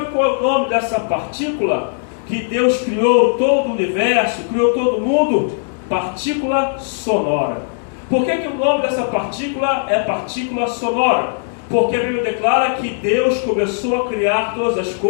qual é o nome dessa partícula? Que Deus criou todo o universo, criou todo o mundo? Partícula sonora. Por que o nome dessa partícula é partícula sonora? Porque a Bíblia declara que Deus começou a criar todas as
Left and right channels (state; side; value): silent; right; digital silence